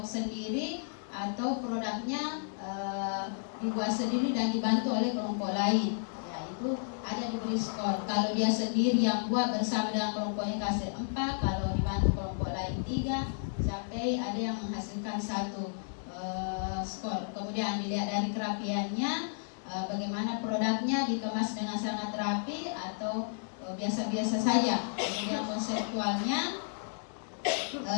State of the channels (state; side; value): silent; right; digital silence